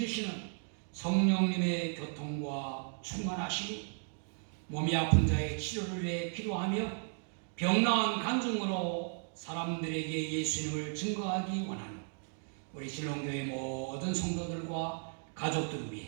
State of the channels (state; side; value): silent; left; 54 dB below the other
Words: 성령님의 교통과 충만하심이 몸이 아픈 자의 치료를 위해 기도하며 병나은 간증으로 사람들에게 예수님을 증거하기 원하는 우리 신롱교회 모든 성도들과 가족들